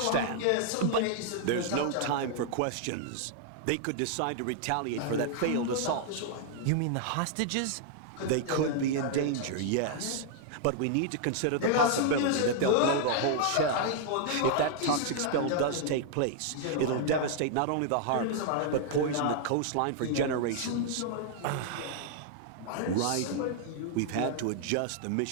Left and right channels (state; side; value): different; both; correlation -0.01